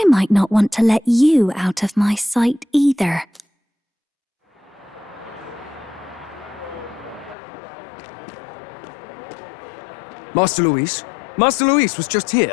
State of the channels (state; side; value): drops out; right; at 7.4 s